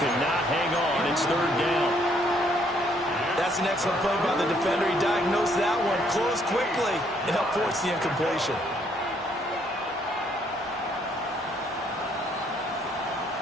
could not hang on. It's 3rd down. That's an excellent play by the defender. He diagnosed that one, closed quickly, and helped force the incompletion.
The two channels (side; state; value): both; normal; correlation 0.68